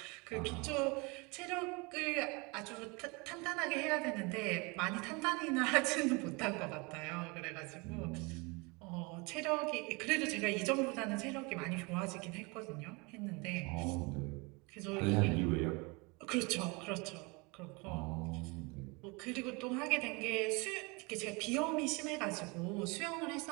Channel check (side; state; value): left; quieter; 28.1 dB